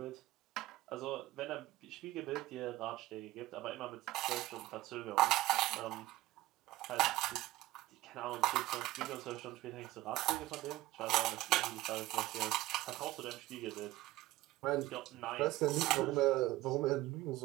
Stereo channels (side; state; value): left; quieter; 17.2 dB